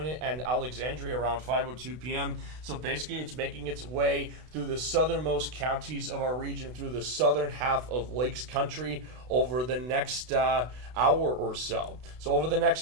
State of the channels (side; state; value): left; late; 32 ms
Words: and Alexandria around 5:02 p.m. So basically, it's making its way through the southernmost counties of our region, through the southern half of Lakes Country over the next hour or so. So over the